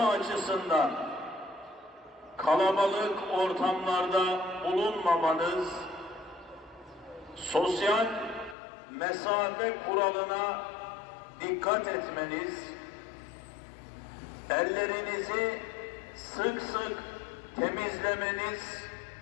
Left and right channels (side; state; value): right; drops out; at 8.6 s